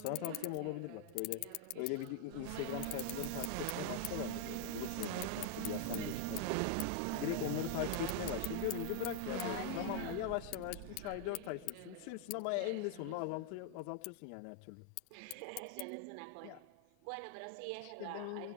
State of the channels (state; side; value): different; both; correlation 0.00